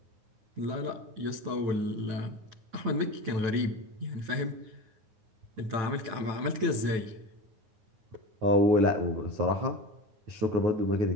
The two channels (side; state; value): left; late; 9.6 ms